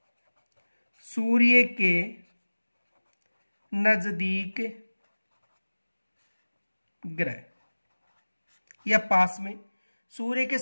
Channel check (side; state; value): both; inverted; correlation -1.00